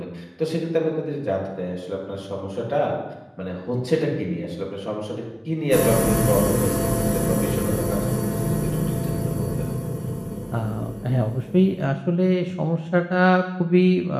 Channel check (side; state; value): both; identical; correlation 1.00